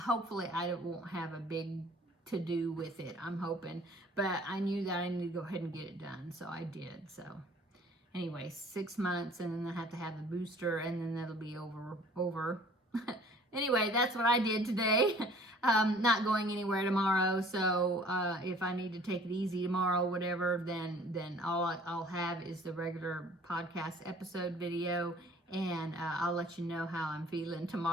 I won't have a big to-do with it, I'm hoping. But I knew that I needed to go ahead and get it done, so I did. So anyway, 6 months, and then I have to have the booster, and then that'll be over. Anyway, that's what I did today. Not going anywhere tomorrow, so if I need to take it easy tomorrow, whatever, then all I'll have is the regular podcast episode video, and I'll let you know how I'm feeling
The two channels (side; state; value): both; normal; correlation 0.52